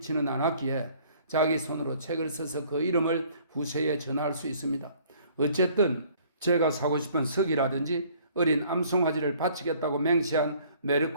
않았기에 자기 손으로 책을 써서 그 이름을 후세에 전할 수 있습니다. 어쨌든 제가 사고 싶은 석이라든지 어린 암송아지를 바치겠다고 맹세한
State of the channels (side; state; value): both; inverted; correlation -0.57